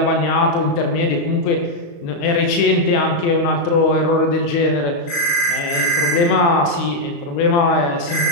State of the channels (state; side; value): late; right; 35 ms